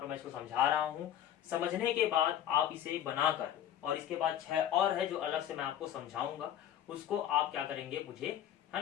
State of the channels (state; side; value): quieter; right; 10.8 dB